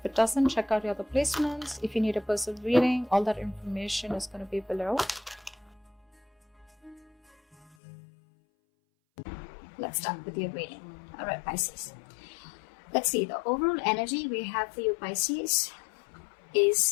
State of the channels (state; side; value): drops out; right; at 7.8 s